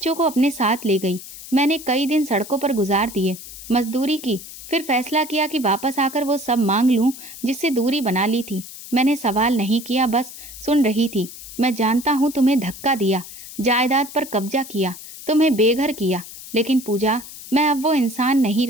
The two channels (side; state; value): left; noise; hiss, 14 dB below the sound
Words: को अपने साथ ले गई। मैंने कई दिन सड़कों पर गुजार दिए, मजदूरी की, फिर फैसला किया कि वापस आकर वो सब मांग लूं जिससे दूरी बना ली थी। मैंने सवाल नहीं किया, बस सुन रही थी। मैं जानता हूँ तुम्हें धक्का दिया, जायदाद पर कब्जा किया, तुम्हें बेघर किया, लेकिन पूजा, मैं अब वो इंसान नहीं